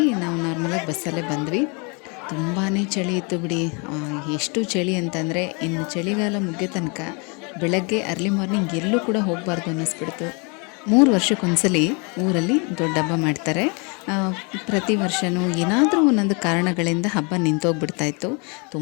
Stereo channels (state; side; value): quieter; right; 32.6 dB